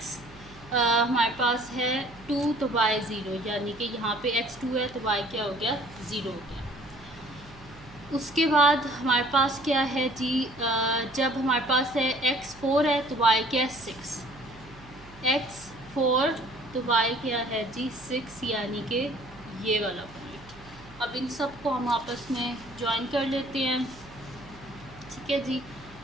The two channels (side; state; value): right; noise; hum, 21 dB below the sound